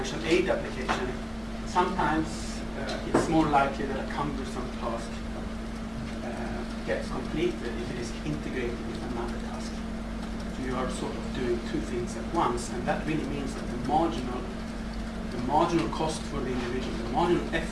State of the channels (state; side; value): identical; both; correlation 1.00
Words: aid application, sometimes it's more likely that a cumbersome task gets completed if it is integrated with another task. So you are sort of doing two things at once, and that really means that the marginal cost for the individual, the marginal